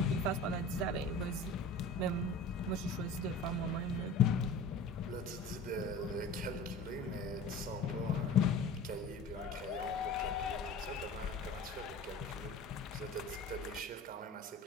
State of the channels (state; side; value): quieter; right; 3.1 dB